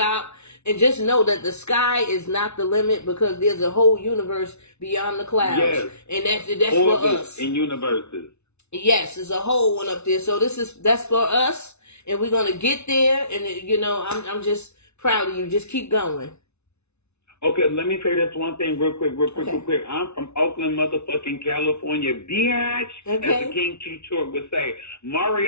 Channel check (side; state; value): right; late; 0.81 ms